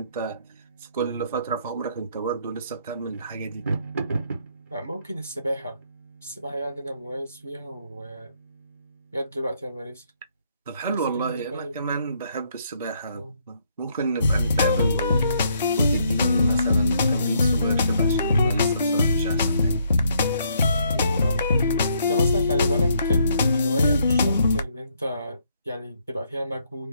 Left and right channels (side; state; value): both; inverted; correlation -0.71